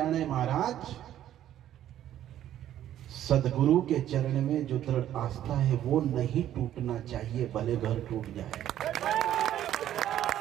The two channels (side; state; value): left; quieter; 11.7 dB